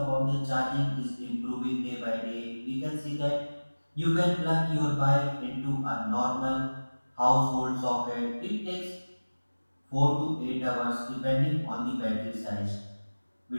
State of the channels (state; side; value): inverted; both; correlation -1.00